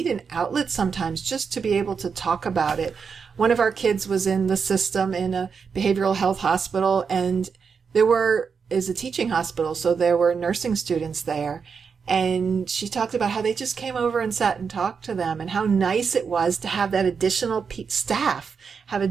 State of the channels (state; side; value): quieter; left; 5.9 dB